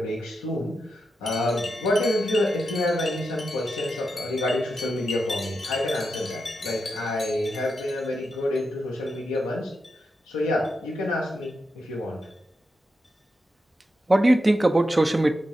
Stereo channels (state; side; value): normal; both; correlation 0.87